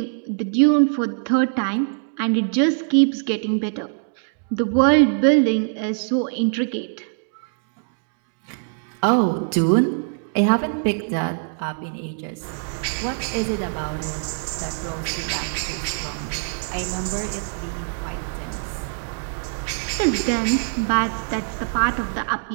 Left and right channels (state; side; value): silent; left; digital silence